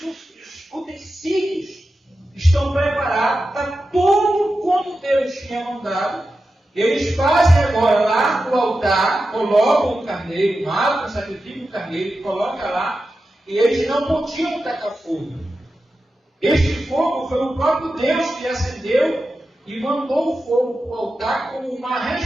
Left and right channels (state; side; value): normal; both; correlation 0.91